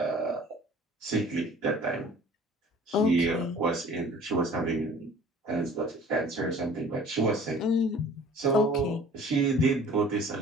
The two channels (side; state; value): both; normal; correlation 0.48